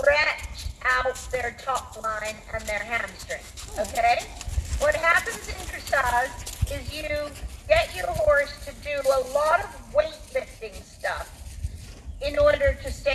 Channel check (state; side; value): identical; both; correlation 1.00